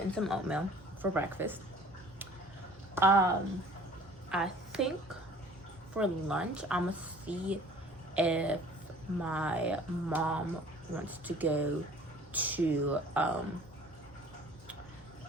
some oatmeal for breakfast. I think for lunch, I'm gonna see if my mom wants to go to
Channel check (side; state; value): both; normal; correlation 0.50